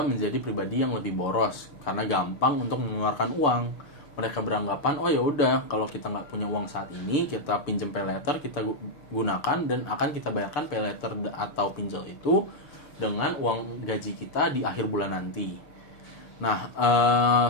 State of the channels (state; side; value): late; right; 6.6 ms